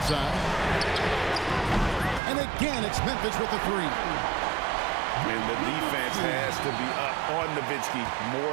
And again, it's Memphis with the three. And the defense has to be up on Nowitzki more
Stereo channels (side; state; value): left; drops out; at 2.2 s